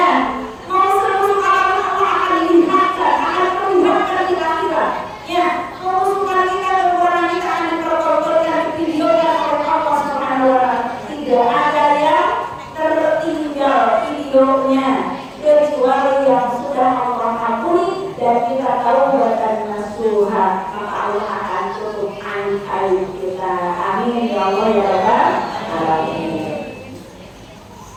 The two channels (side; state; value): both; identical; correlation 1.00